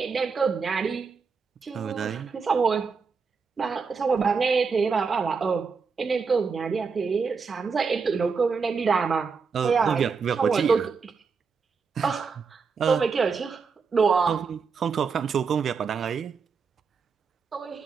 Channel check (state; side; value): quieter; left; 5.3 dB